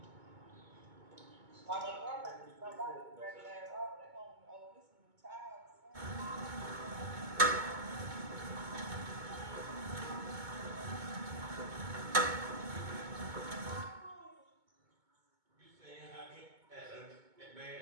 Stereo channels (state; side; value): late; left; 2.2 ms